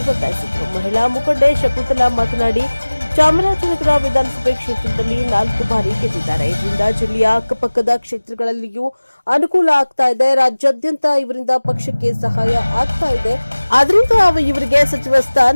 ಒತ್ತಾಯಿಸಿದರು. ಮಹಿಳಾ ಮುಖಂಡೆ ಶಕುಂತಲಾ ಮಾತನಾಡಿ, ಚಾಮರಾಜನಗರ ವಿಧಾನಸಭೆ ಕ್ಷೇತ್ರದಲ್ಲಿ 4 ಬಾರಿ ಗೆದ್ದಿದ್ದಾರೆ. ಇದರಿಂದ ಜಿಲ್ಲೆಯ ಅಕ್ಕಪಕ್ಕದ ಕ್ಷೇತ್ರಗಳಲ್ಲಿಯೂ ಅನುಕೂಲ ಆಗ್ತಾ ಇದೆ. ರಾಜ್ಯಾದ್ಯಂತ ಇವರಿಂದ ಪಕ್ಷಕ್ಕೆ ಸಹಾಯ ಆಗ್ತಾ ಇದೆ. ಆದ್ರಿಂದ ಇವರಿಗೆ ಸಚಿವ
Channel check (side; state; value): both; inverted; correlation -1.00